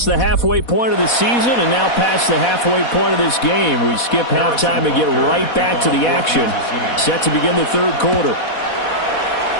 the halfway point of the season and now past the halfway point of this game. We skip halftime and get right back to the action. Set to begin the third quarter.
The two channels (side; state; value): right; late; 4.1 ms